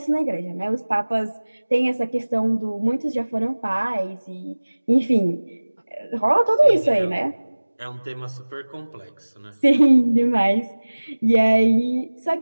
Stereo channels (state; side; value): inverted; both; correlation -1.00